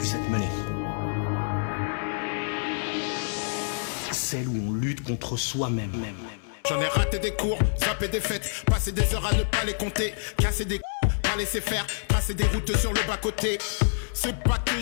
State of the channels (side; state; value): right; silent; 60 dB below the other